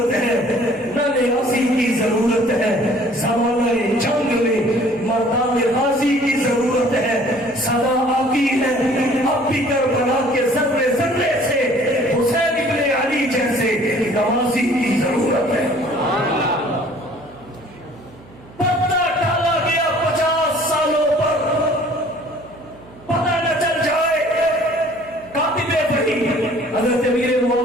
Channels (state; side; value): noise; right; hum, 23 dB below the sound